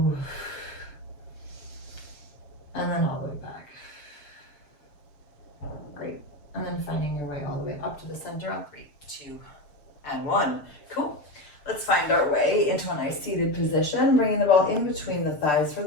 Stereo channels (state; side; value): late; right; 6.8 ms